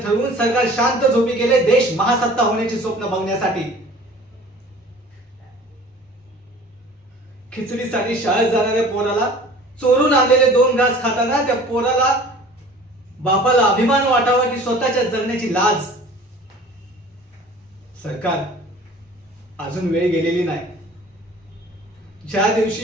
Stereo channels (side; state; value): both; normal; correlation 0.46